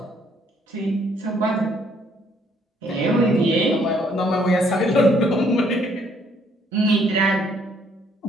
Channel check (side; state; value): both; normal; correlation 0.66